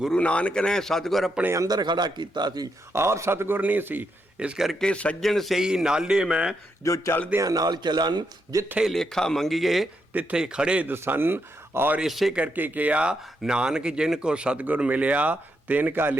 ਨਾਨਕ ਨੇ ਸਤਿਗੁਰ ਆਪਣੇ ਅੰਦਰ ਖੜਾ ਕੀਤਾ ਸੀ, ਆਪ ਸਤਿਗੁਰ ਨਹੀਂ ਸੀ। ਇਸ ਕਰਕੇ ਸੱਜਣ ਸਹੀ ਨਾਲੇ ਮੈਂ, ਜੋ ਚੱਲਦਿਆਂ ਨਾਲ ਚੱਲਣ, ਜਿੱਥੇ ਲੇਖਾ ਮੰਗੀਏ ਤਿੱਥੇ ਖੜੇ ਦਸਨ। ਔਰ ਇਸੇ ਕਰਕੇ ਕਿਹਾ, ਨਾਨਕ ਜਿਨ ਕੋ ਸਤਿਗੁਰ ਮਿਲਿਆ ਤਿਨ ਕਾ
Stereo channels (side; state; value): both; normal; correlation 0.81